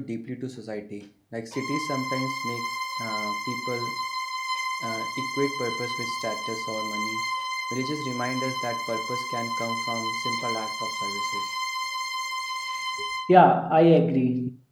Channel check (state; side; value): identical; both; correlation 1.00